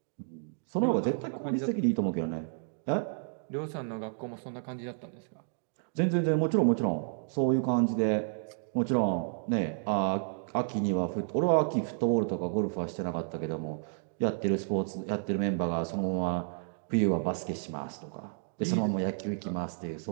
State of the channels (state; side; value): silent; left; digital silence